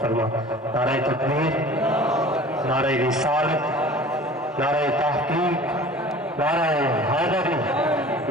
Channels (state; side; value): normal; both; correlation 0.43